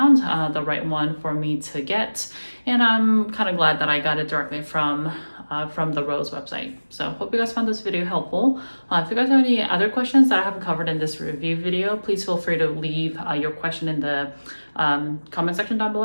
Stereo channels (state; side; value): inverted; both; correlation -1.00